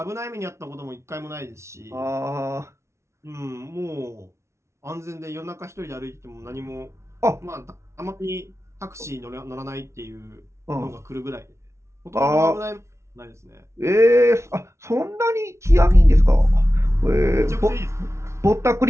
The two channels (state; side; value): late; left; 0.13 ms